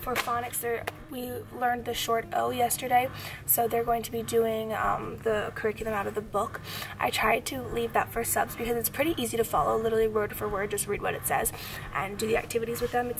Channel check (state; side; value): identical; both; correlation 1.00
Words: For phonics, we learned the short O yesterday, so they're going to be doing the curriculum out of the book. I tried to leave that for subs because it's pretty easy to follow, literally word for word, just read what it says and do the activities with them.